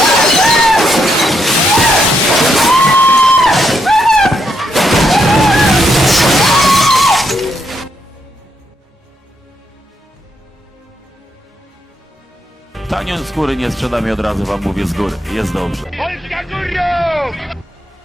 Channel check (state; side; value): normal; both; correlation 0.78